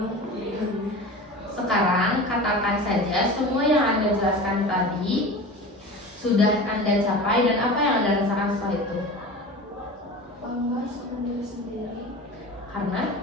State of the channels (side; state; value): both; normal; correlation 0.33